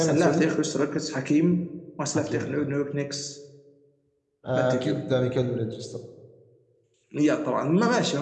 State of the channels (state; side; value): identical; both; correlation 1.00